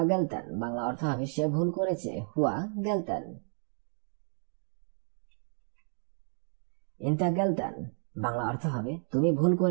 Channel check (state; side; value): silent; left; 57 dB below the other